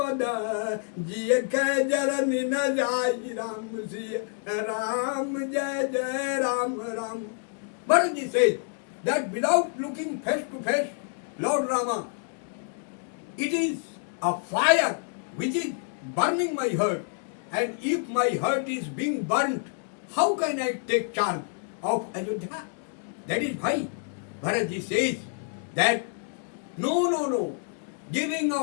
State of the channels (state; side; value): silent; right; 57 dB below the other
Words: जिय कह जरन न जाई राम सिय राम जय जय Ram Ram. Bharatji says that without looking face to face, Lord Rama, it is a fire which is burning my heart, and if my heart is being burnt, how can I take charge of Ayodhya? That is why Bharatji says that no, giving